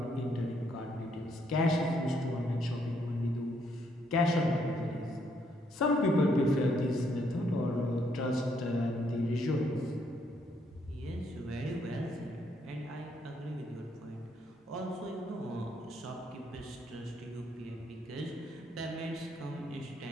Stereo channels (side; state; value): both; normal; correlation 0.72